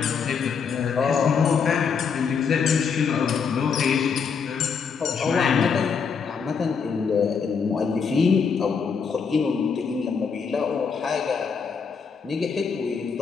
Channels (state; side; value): quieter; right; 6.0 dB